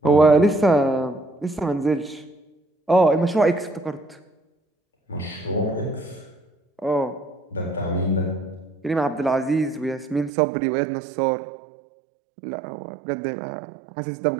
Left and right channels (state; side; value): drops out; left; at 10.3 s